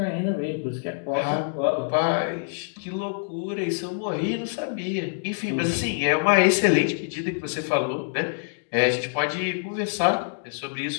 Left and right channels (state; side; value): silent; right; digital silence